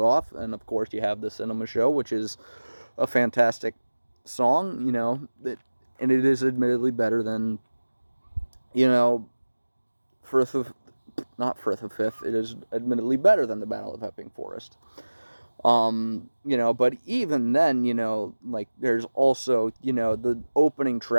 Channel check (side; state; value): both; inverted; correlation -1.00